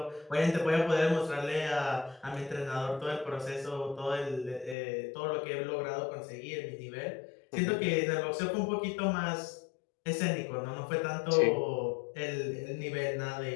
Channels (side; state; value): right; drops out; at 4.8 s